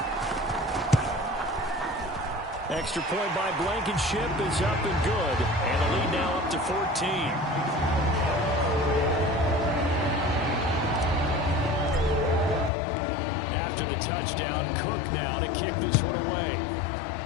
Extra point by Blankenship is up and good. And the lead now up to 14. After the touchdown, Cook now to kick this one away.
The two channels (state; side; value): drops out; right; at 12.7 s